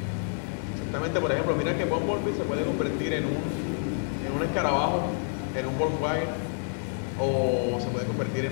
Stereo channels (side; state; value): right; silent; 59 dB below the other